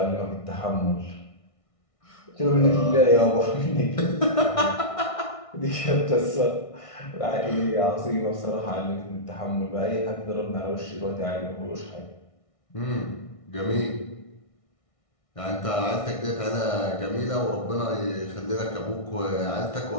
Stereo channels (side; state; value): right; late; 1.6 ms